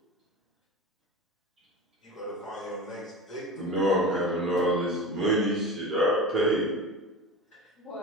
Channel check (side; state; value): both; normal; correlation 0.30